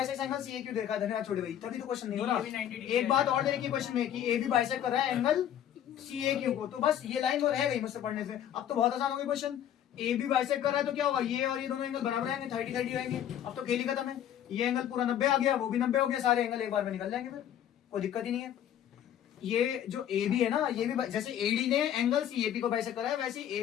angle C A क्यों देखा। धन्यवाद छोटे भाई, तभी तो क्वेश्चन नहीं हो रहा। एक बात और देखिए क्वेश्चन में कि ए बी बाइसेक्ट कर रहा है एंगल सी ए क्यू को, तो बस ये लाइन वो रह गई मुझसे पढ़ने से। अब तो बहुत आसान हो गई क्वेश्चन। ए बी बाइसेक्ट कर रहा है तो क्या होगा, ये और ये दोनों एंगल बराबर आएंगे, 30-30 रहेंगे। अब तो खेल ही खत्म है। ये एंगल पूरा 90 आ गया, वो भी 90 हो गया, सारे एंगल एक बार में निकल जाएंगे, फिर कोई दिक्कत ही नहीं है। ये जो ए बी है ना, ये भी जैसे एडी ने एंगल सी ए पी को बाइसेक्ट करा है, वैसे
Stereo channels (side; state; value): right; quieter; 10.5 dB